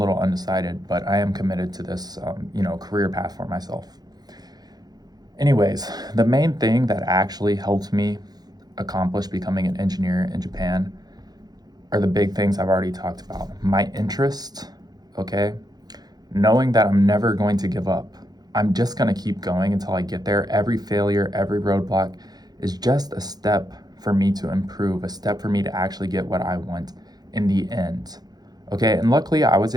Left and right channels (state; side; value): late; left; 0.19 ms